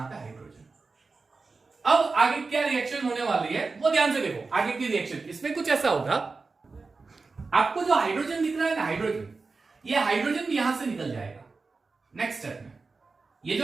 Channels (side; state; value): left; quieter; 4.1 dB